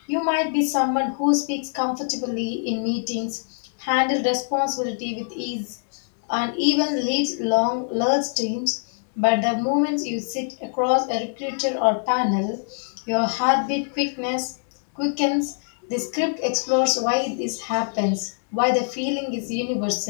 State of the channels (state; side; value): silent; right; digital silence